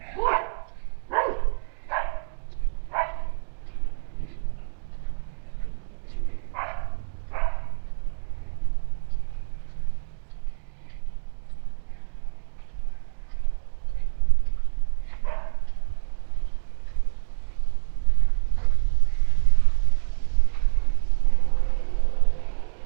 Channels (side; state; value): left; silent; digital silence